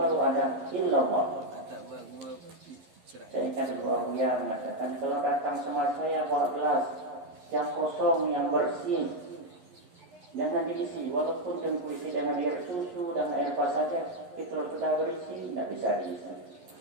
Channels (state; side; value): late; left; 11 ms